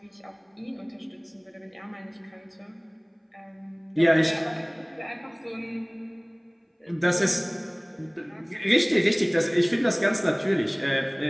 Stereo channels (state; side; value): identical; both; correlation 1.00